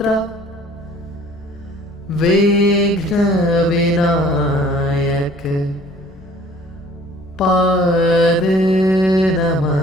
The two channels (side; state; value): both; normal; correlation 0.53